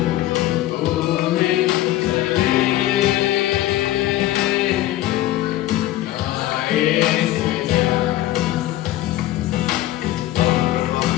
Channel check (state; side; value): quieter; right; 14.9 dB